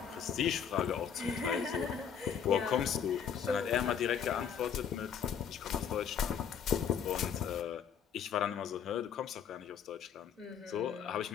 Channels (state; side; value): quieter; right; 7.8 dB